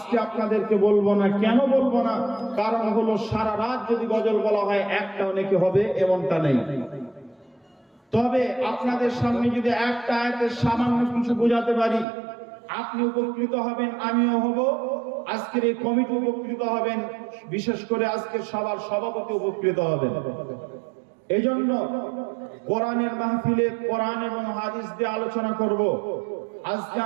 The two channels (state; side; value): drops out; left; at 12.1 s